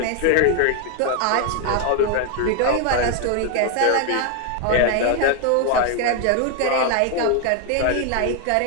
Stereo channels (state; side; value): different; both; correlation 0.01